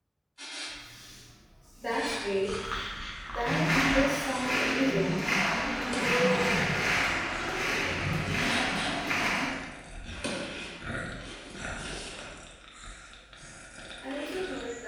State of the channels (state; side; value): identical; both; correlation 1.00